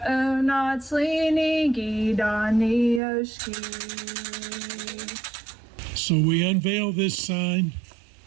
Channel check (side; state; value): left; drops out; at 3.0 s